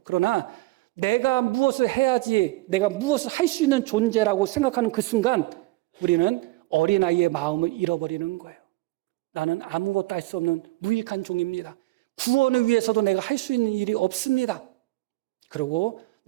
그러나 내가 무엇을 해야지, 내가 무엇을 할 수 있는 존재라고 생각하는 그 순간 우리는 어린아이의 마음을 잃어버리는 거예요. 나는 아무것도 할 수 없는 무익한 종입니다. 구원을 위해서도 내가 할 수 있는 일이 없습니다. 그리고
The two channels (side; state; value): left; quieter; 20.8 dB